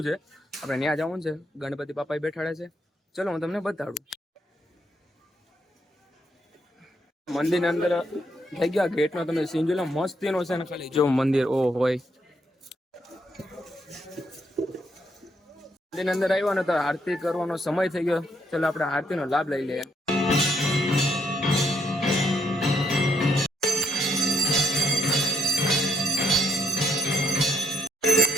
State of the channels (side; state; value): both; normal; correlation 0.74